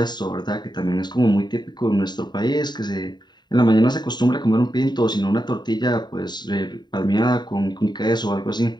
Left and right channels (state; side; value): late; right; 0.21 ms